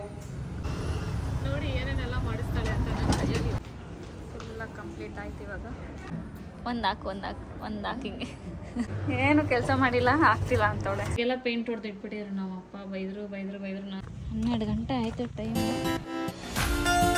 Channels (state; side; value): identical; both; correlation 1.00